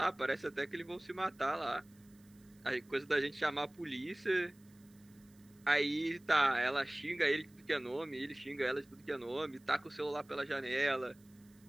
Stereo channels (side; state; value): right; noise; hiss, 30 dB below the sound